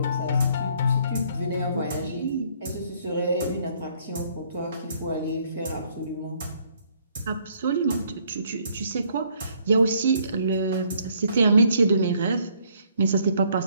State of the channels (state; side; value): inverted; both; correlation -0.66